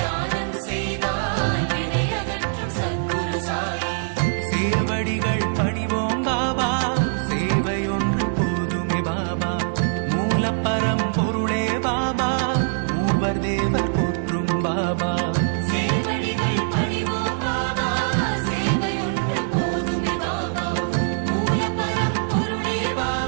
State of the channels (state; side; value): silent; left; digital silence